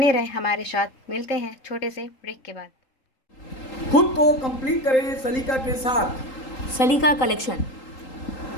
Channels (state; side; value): late; right; 3.8 ms